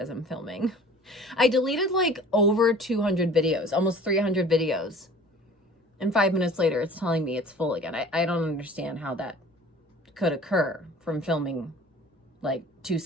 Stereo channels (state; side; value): normal; both; correlation 0.46